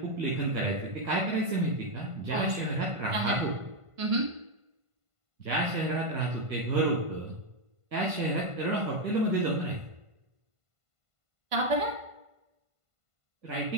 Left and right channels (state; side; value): late; left; 1.5 ms